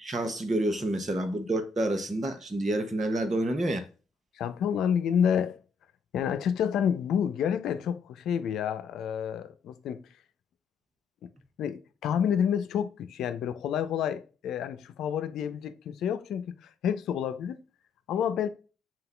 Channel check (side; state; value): right; quieter; 4.8 dB